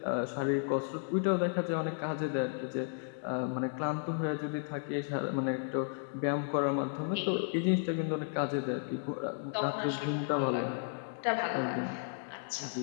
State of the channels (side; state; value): right; silent; digital silence